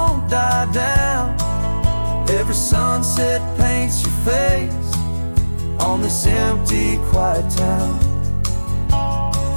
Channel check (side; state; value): both; inverted; correlation -1.00